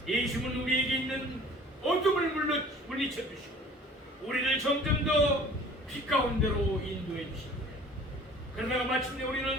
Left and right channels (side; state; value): both; normal; correlation 0.48